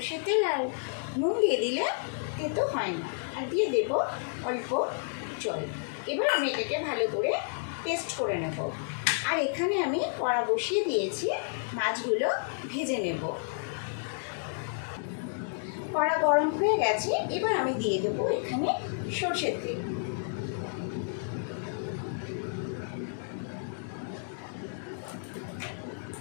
তেল আর নুন দিয়ে দিলে তেতো হয় না। আর দিয়ে দেব অল্প জল। এবার আমি এটাকে ভালো করে পেস্ট করে নেব। আর এখানে আমি কড়া বসিয়ে দিয়েছি, মাছগুলো ভেজে নেব। কড়া গরম হয়ে গেছে। এবার আমি দিয়ে দেব এখানে সর্ষের তেল।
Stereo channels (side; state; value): right; silent; 57 dB below the other